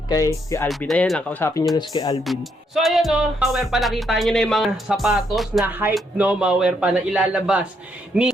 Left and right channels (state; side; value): normal; both; correlation 0.75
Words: kay Alvin. Ayan lang, kausapin nyo na si Alvin. So ayan, no, mga Werpa, nakita nyo na yung mga sapatos na hype, no, mga Werpa, na ilalabas ni